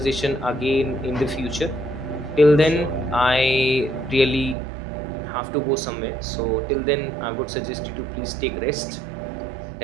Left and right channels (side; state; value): left; drops out; at 4.5 s